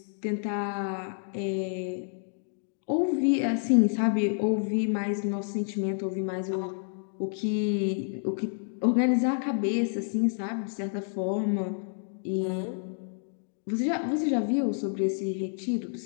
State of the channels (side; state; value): right; silent; 59 dB below the other